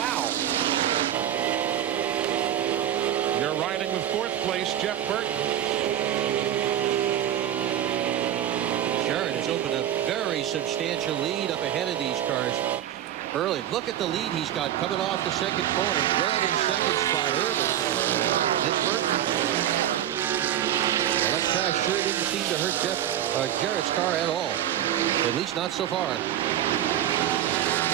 You're riding with fourth place, Jeff Burton. Jarrett has opened a very substantial lead up ahead of these cars. Early, look at the lead he's got coming off the second corner. Rudd in second spot, Irvin. Then Burton. Well, that crash sure didn't seem to hurt Jarrett's car at all. At least not so far.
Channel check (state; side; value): quieter; left; 11.3 dB